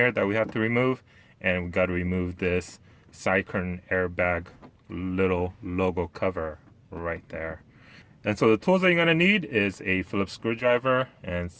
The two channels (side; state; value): both; identical; correlation 1.00